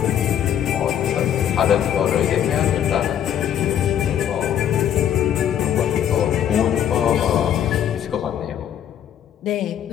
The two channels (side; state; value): right; quieter; 9.9 dB